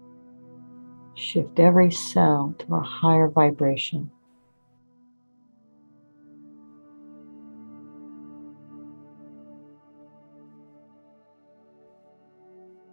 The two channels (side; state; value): both; inverted; correlation -1.00